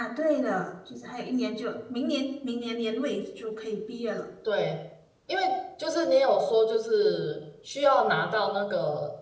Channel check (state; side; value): identical; both; correlation 1.00